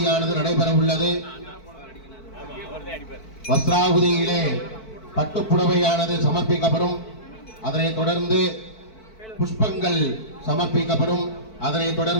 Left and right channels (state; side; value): late; right; 4.5 ms